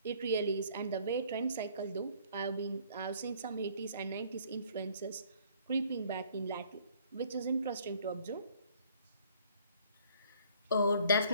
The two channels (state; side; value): inverted; both; correlation -0.59